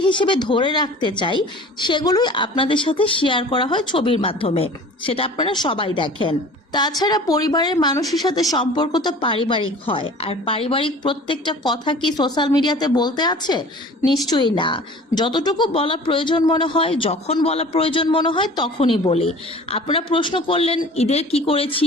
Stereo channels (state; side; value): normal; both; correlation 0.43